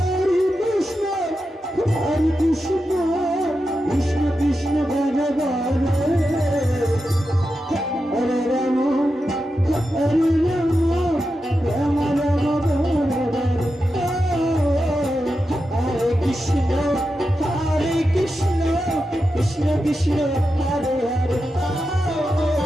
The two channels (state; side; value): normal; both; correlation 0.89